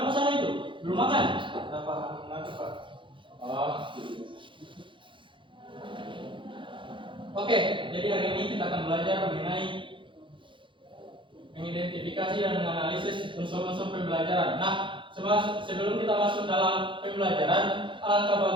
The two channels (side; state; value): left; late; 0.24 ms